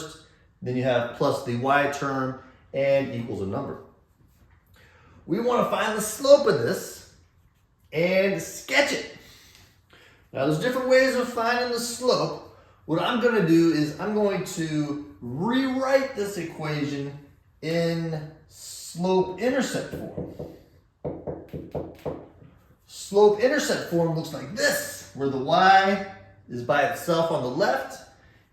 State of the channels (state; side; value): identical; both; correlation 1.00